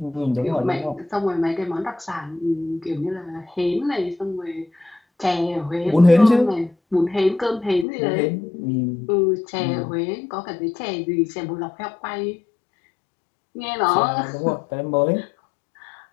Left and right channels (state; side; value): drops out; right; at 7.9 s